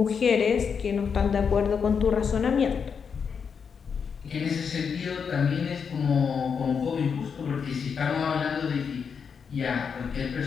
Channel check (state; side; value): quieter; right; 6.4 dB